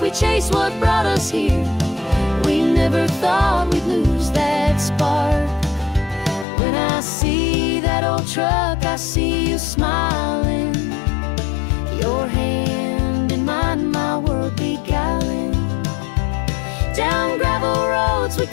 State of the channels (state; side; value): drops out; right; at 6.5 s